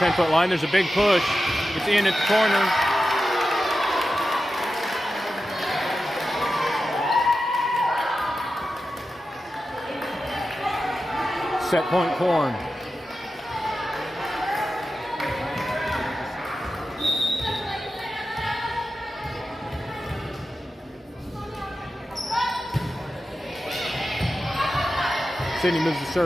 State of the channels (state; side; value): normal; both; correlation 0.92